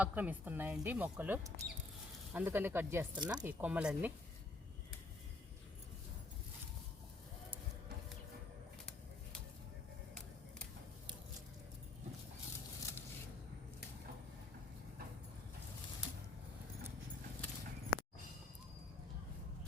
ఆక్రమిస్తున్నాయండి మొక్కలు, అందుకని కట్ చేస్తున్నా ఈ కొమ్మలన్నీ.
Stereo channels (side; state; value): right; quieter; 3.3 dB